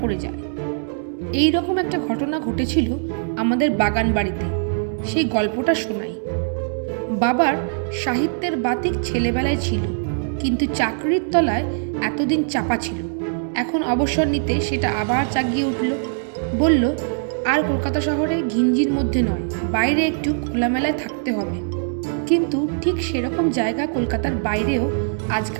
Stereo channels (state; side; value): silent; left; digital silence